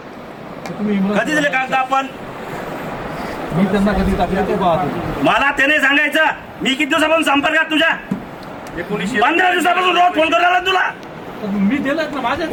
कधी दिले कागद आपण मी त्यांना कधी टाकले ते पाहतो मला त्याने सांगायचं मी किती दिवसापासून संपर्कात तुझ्या 15 दिवसापासून रोज फोन करायला तुला मी दिलं ना माझ्या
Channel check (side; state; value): both; identical; correlation 1.00